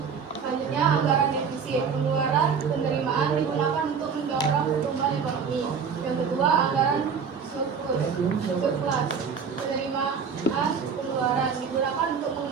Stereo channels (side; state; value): left; quieter; 6.3 dB